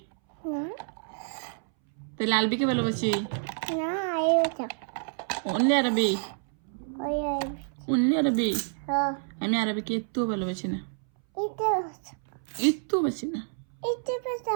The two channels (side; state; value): left; silent; 59 dB below the other